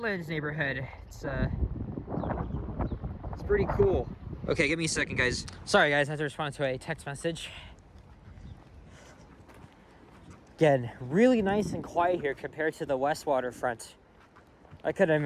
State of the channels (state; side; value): identical; both; correlation 1.00